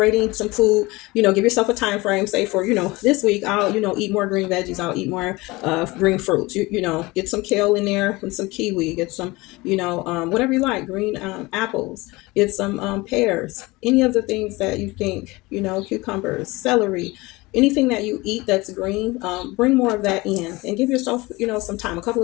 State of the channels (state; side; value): quieter; right; 22.2 dB